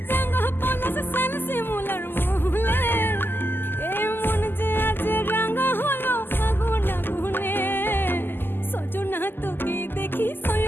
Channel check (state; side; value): late; right; 0.097 ms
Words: রাঙা পলাশ সাল শিমুলার মহুলে এ মন যে আজ রাঙা হলো ফাগুন আগুনে সজনা তোকে দেখি